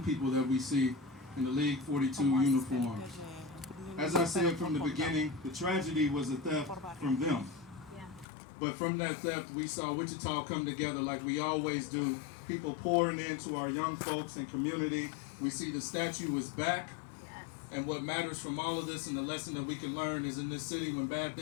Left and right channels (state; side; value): drops out; right; at 8.2 s